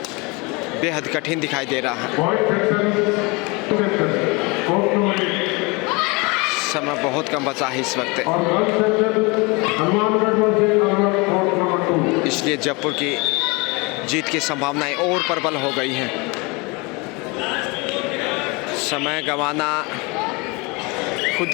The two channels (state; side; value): quieter; right; 27.4 dB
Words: बेहद कठिन दिखाई दे रहा है। समय बहुत कम बचा है इस वक्त, इसलिए जयपुर की जीत की संभावनाएं और प्रबल हो गई हैं। समय गंवाना खुद